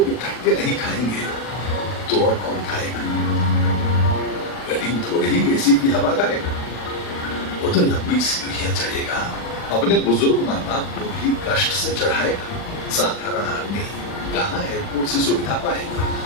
धक्के नहीं खाएंगे तो और कौन खाएगा? गरीब थोड़े ही एसी की हवा खाएगा। वो तो लंबी सीढ़ियां चढ़ेगा, अपने बुजुर्ग माँ बाप को भी कष्ट से चढ़ाएगा। साधारण आदमी कहाँ एयरपोर्ट से सुविधा पाएगा?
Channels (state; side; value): late; right; 40 ms